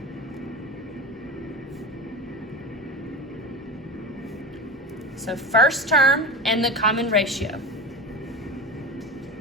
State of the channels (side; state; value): both; normal; correlation 0.26